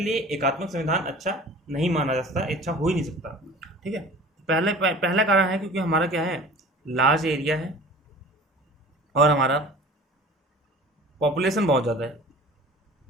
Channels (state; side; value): normal; both; correlation 0.42